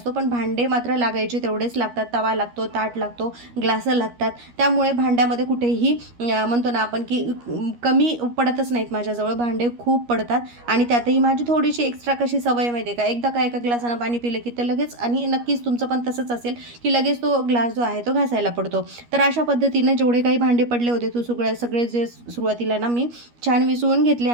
पण भांडे मात्र लागायचे तेवढेच लागतात. तवा लागतो, ताट लागतो, ग्लासं लागतात. त्यामुळे भांड्यामध्ये कुठेही म्हणतो ना आपण की कमी पडतच नाहीत. माझ्याजवळ भांडे खूप पडतात आणि त्यातही माझी थोडीशी एक्स्ट्रा कशी सवय माहिती आहे का, एकदा का एका ग्लासानं पाणी पिलं की ते लगेच आणि नक्कीच तुमचं पण तसंच असेल की लगेच तो ग्लास जो आहे तो घासायला पडतो. तर अशा पद्धतीने जेवढे काही भांडे पडले होते तो सगळे जे सुरुवातीला ना मी छान विसळून घेतले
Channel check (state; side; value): late; left; 13 ms